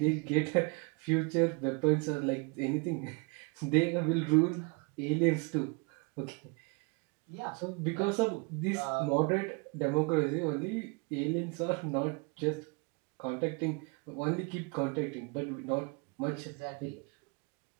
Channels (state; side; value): quieter; left; 31.9 dB